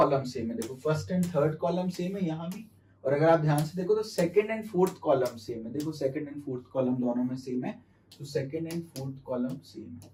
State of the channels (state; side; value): identical; both; correlation 1.00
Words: सेम है। देखो first and third column same है यहां भी, और अगर आप ध्यान से देखो तो second and fourth column same है। देखो सेकेंड एंड फोर्थ कॉलम दोनों में सेम है, तो second and fourth column same है।